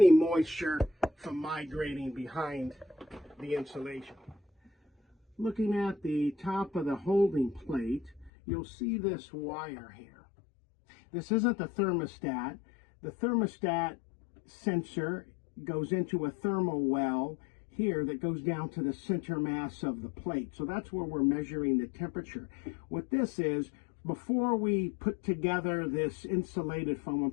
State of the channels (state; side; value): drops out; right; at 8.3 s